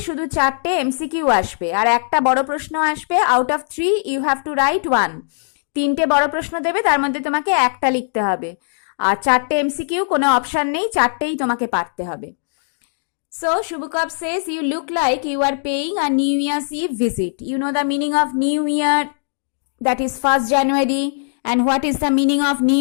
শুধু 4টে MCQ আসবে আর একটা বড় প্রশ্ন আসবে। Out of 3 you have to write 1. 3টে বড় প্রশ্ন দেবে, তার মধ্যে তোমাকে একটা লিখতে হবে। আর 4টে MCQ, কোনো অপশন নেই, 4টেই তোমাকে পারতে হবে। So Shubukov says, you look like you are paying a New Year's Eve visit. You know the meaning of New Year, that is 1st January. And what is the meaning of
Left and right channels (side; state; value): right; silent; digital silence